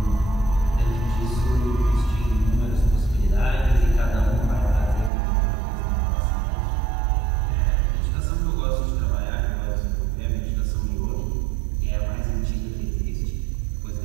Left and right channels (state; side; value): drops out; left; at 5.1 s